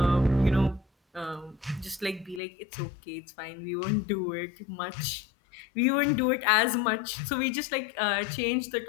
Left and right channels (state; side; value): drops out; right; at 2.4 s